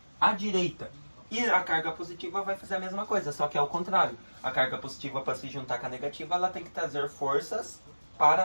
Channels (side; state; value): both; inverted; correlation -1.00